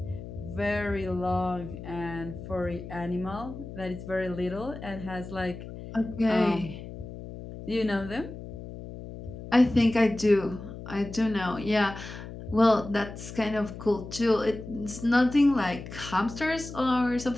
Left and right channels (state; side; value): noise; left; hum, 11 dB below the sound